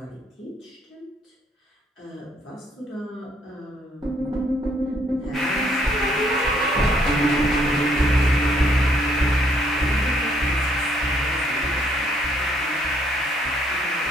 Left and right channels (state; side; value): normal; both; correlation 0.68